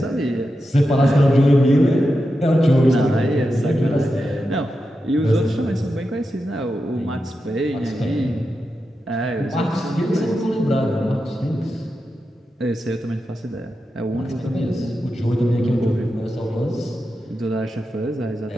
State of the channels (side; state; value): both; normal; correlation 0.89